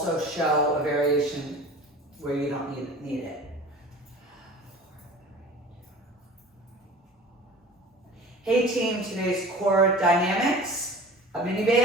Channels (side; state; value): both; normal; correlation 0.41